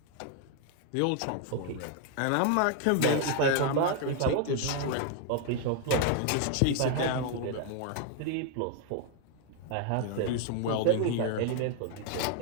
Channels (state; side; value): different; both; correlation 0.01